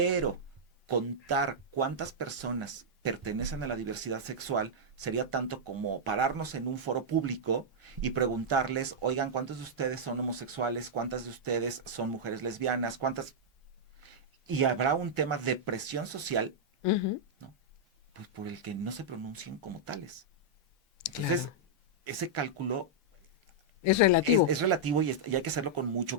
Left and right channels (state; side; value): normal; both; correlation -0.07